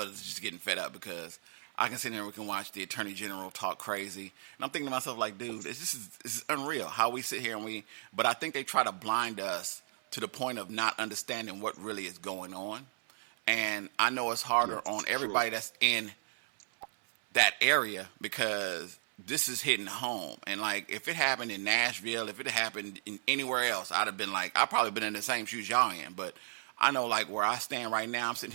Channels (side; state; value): left; silent; 55 dB below the other